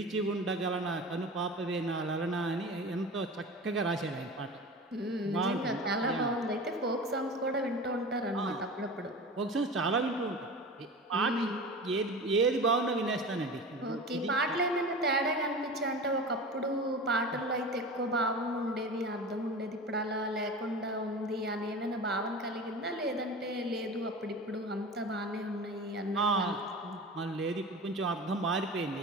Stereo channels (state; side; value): normal; both; correlation 0.33